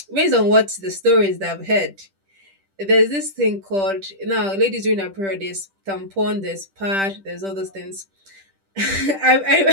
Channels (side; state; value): left; late; 10 ms